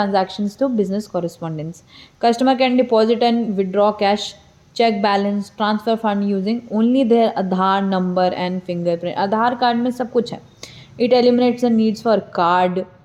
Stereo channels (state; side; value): identical; both; correlation 1.00